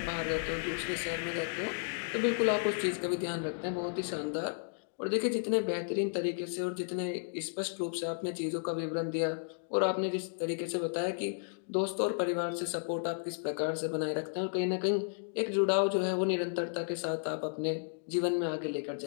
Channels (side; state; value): right; silent; digital silence